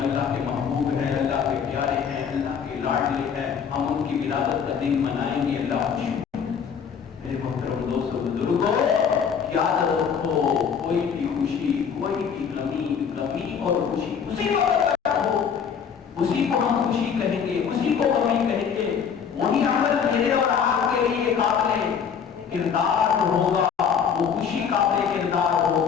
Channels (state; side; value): quieter; right; 7.1 dB